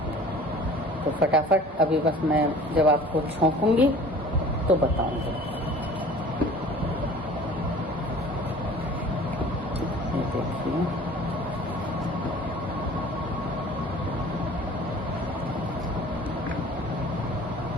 तो फटाफट अभी बस मैं जब आपको छौंकूंगी तो बताऊंगी। ये देखिए,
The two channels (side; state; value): both; normal; correlation 0.46